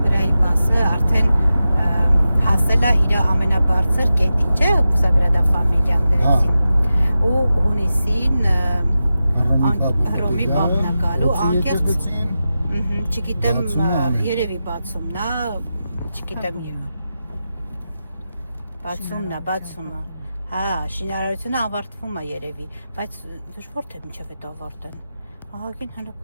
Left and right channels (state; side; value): inverted; both; correlation -0.92